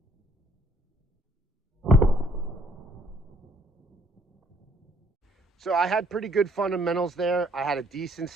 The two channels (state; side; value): normal; both; correlation 0.62